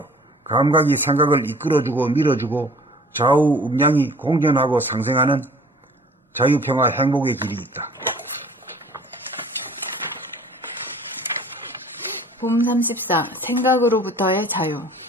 감각이 생각을 이끌어주고 밀어주고 좌우 음량이 공존하고 상생하는 자유, 평화, 행복의 길이 있다. 봄 34. 생각으로부터의 자유.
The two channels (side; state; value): both; normal; correlation 0.49